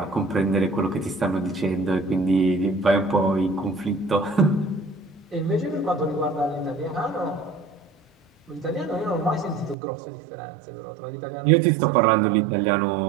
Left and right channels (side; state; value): left; drops out; at 9.8 s